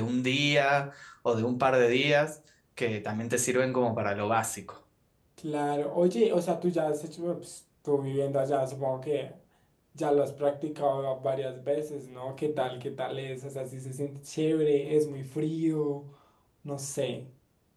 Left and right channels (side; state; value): both; identical; correlation 1.00